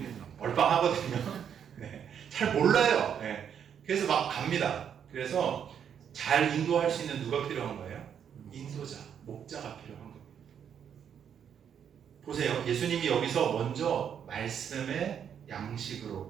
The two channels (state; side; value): quieter; left; 8.3 dB